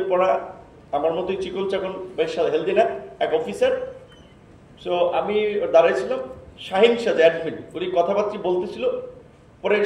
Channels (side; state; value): both; identical; correlation 1.00